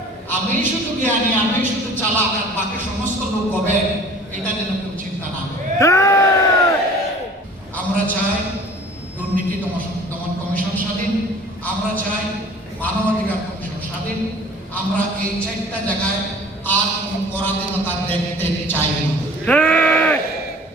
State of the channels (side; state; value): both; normal; correlation 0.47